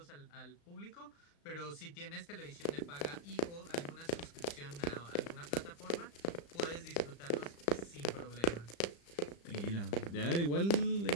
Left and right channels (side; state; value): right; late; 35 ms